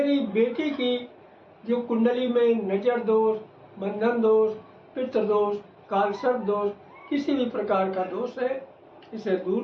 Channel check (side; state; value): both; identical; correlation 1.00